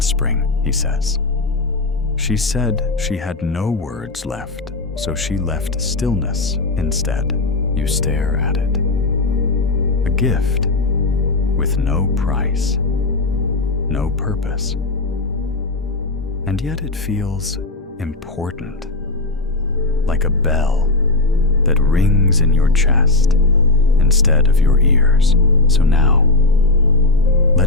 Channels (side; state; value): right; quieter; 3.2 dB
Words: spring," he says. "She said she had no words left, so she left stillness instead." You stare at it. A gift with no price, no purpose. And yet it feels important, like a bell that rings in your chest instead of your ears. So now,